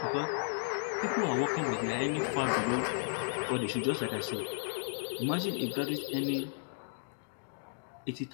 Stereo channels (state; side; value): silent; right; digital silence